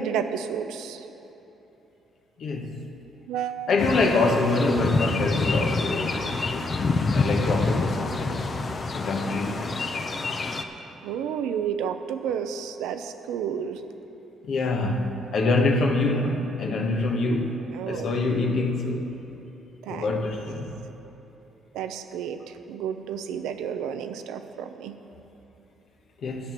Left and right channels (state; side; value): normal; both; correlation 0.69